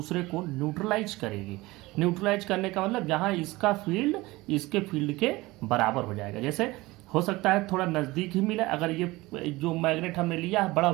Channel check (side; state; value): left; quieter; 20.5 dB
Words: को न्यूट्रलाइज करेगी। न्यूट्रलाइज करने का मतलब जहाँ इसका फील्ड इसके फील्ड के बराबर हो जाएगा। जैसे हो सकता है थोड़ा नज़दीक ही मिले, अगर ये जो मैग्नेट हमने लिया है बड़ा